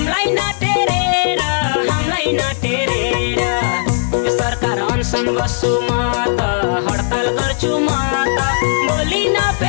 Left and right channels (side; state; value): right; silent; digital silence